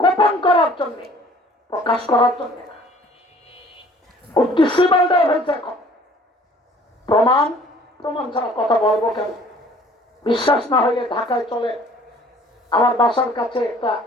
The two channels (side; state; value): both; normal; correlation 0.53